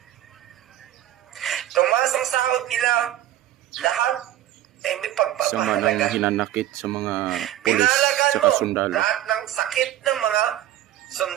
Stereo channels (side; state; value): left; quieter; 13.2 dB